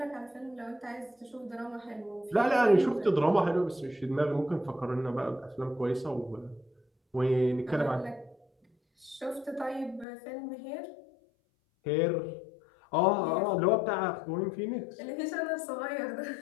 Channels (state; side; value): drops out; right; at 10.1 s